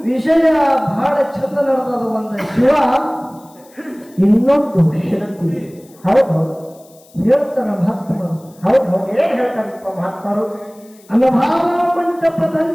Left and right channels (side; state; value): left; noise; hiss, 28 dB below the sound